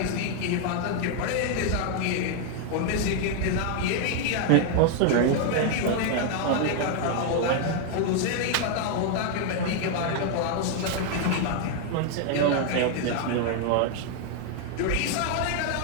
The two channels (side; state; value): both; different; correlation 0.00